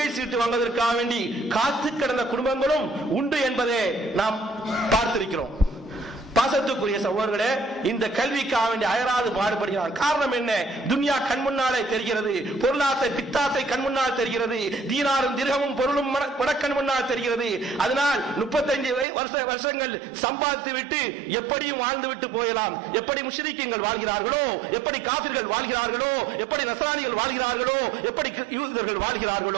சீட்டு வாங்குவதற்காக வேண்டி காத்து கிடந்த குடும்பங்களும் உண்டு என்பதை நாம் பார்த்திருக்கிறோம். பாசத்துக்குரிய சகோதரர்களே, இந்த கல்விக்காக வேண்டி அயராது பாடுபடுகிறான். காரணம் என்ன? துன்யா கண் முன்னாலே தெரிகிறது, பொருளாசை பித்தாசை கண் முன்னால் தெரிகிறது, தீனாரும் திரகமும் பொருளும் கண் முன்னால் தெரிகிறது. அதனால் 35 வருஷங்கள் சம்பாதித்து விட்டு எப்படியும் வாழ்ந்து விட்டு போயலாம். எப்படி முஷ்ரிக்கீன்கள் வாழ்கிறார்களோ, எப்படி காபிர்கள் வாழ்கிறார்களோ, எப்படி நஸ்ரானிகள் வாழ்கிறார்களோ, எப்படி யூதர்கள்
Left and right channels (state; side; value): drops out; left; at 19.1 s